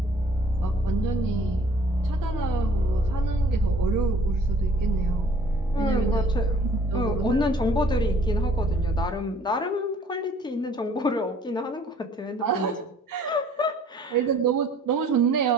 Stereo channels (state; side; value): normal; both; correlation 0.55